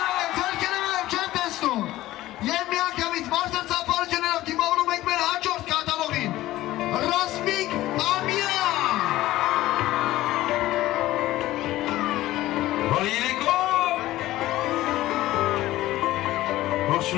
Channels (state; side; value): quieter; right; 16.0 dB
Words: Ձերքերով չեմ տեսնում։ Եվ միանգամից բարձր ծափարություններով դիմավորում ենք մեր հաջորդ կատալոգին։ Ռասմիկ Ամյան։ Բարի երեկո։